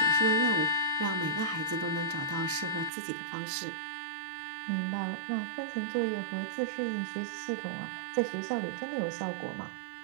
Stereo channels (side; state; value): left; drops out; at 2.9 s